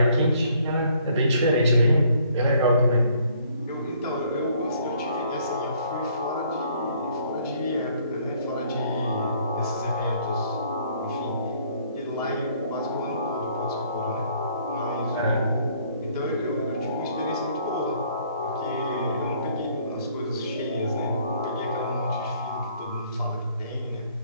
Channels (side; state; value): both; inverted; correlation -0.63